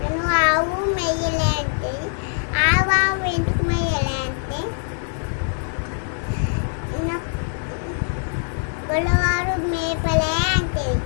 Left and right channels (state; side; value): silent; right; digital silence